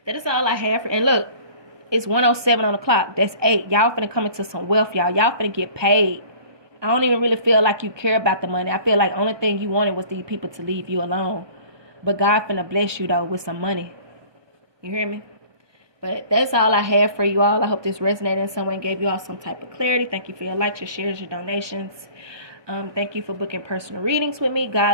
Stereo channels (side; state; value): left; late; 1.2 ms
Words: that is all I have for. And look, it's 1:07 on the clock. That's 8. Y'all finna come into some wealth, y'all. Y'all finna get paid. I don't even really feel like you care about the money. I feel like the only thing you wanted was these people to leave you alone. But God finna bless you, though, with some money. You hear me? But that's all I have for you all. I hope this resonated in some way and gave you all some type of clarity. Thank you for your likes, your shares, your donations. Thank you for booking personal readings with me.